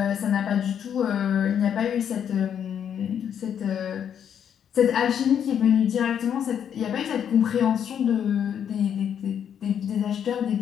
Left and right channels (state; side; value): quieter; right; 8.7 dB